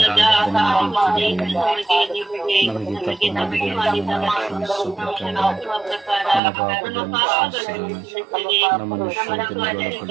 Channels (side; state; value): left; drops out; at 6.4 s